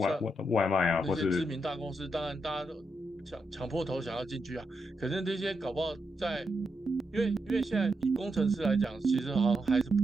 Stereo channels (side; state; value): both; normal; correlation 0.83